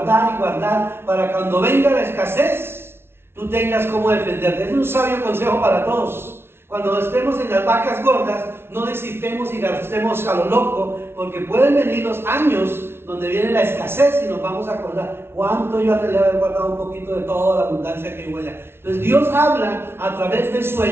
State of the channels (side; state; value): left; late; 0.12 ms